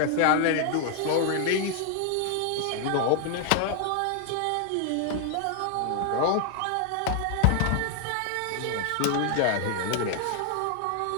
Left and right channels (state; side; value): different; both; correlation 0.00